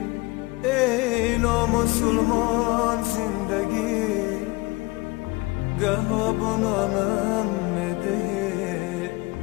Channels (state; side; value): quieter; right; 23.4 dB